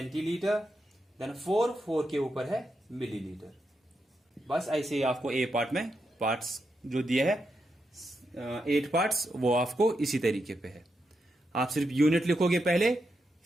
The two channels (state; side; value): normal; both; correlation 0.84